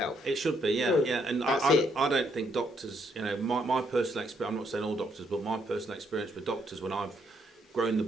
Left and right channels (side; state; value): both; normal; correlation 0.73